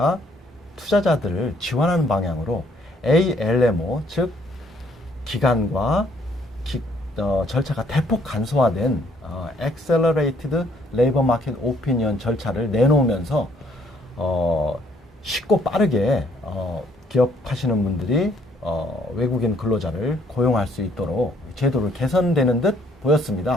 투자자들을 지원하는 방향으로 ALMO, 즉 기간과 절차가 대폭 간소화된 Accelerated Labor Market Opinion 절차를 내놓으면서 쉽고 빠르게 기업하시는 분들이 외국인 근로자를 고용할 수 있도록 제도를 개선되는 듯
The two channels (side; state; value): both; normal; correlation 0.65